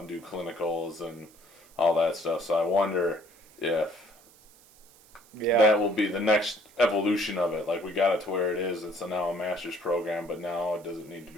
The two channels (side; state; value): right; noise; hiss, 26 dB below the sound